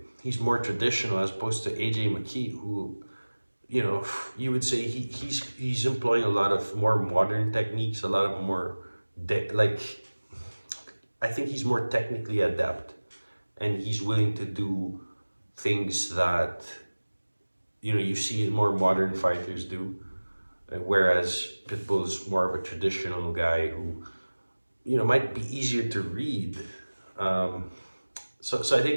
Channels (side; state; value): both; inverted; correlation -1.00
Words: he's more traditional as opposed to AJ McKee, who, you know, you would say he's employing a lot of more modern techniques, a lot of more like, I think he's more technically adept, and he's willing to do things that, you know, you see more modern fighters do, whereas Pitbull's more of a traditional guy who, you know, might be easier to read. So I